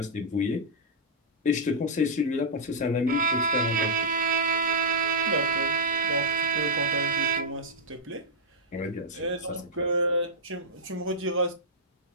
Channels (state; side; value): normal; both; correlation -0.07